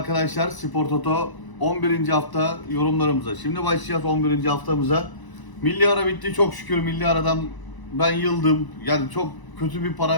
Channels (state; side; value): late; right; 1.0 ms